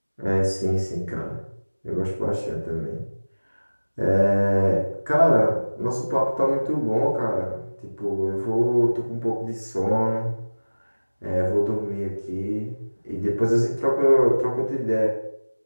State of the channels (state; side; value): inverted; both; correlation -1.00